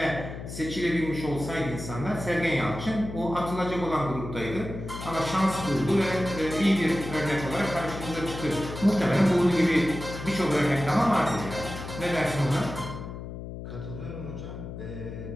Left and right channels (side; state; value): left; noise; hum, 9 dB below the sound